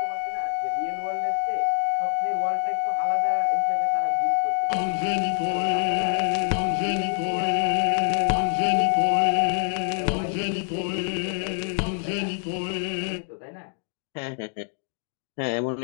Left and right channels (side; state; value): right; silent; 56 dB below the other